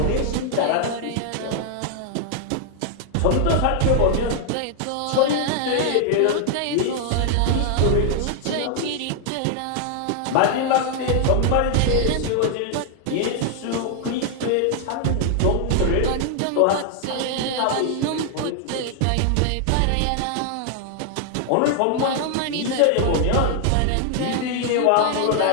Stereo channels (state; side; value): different; both; correlation 0.00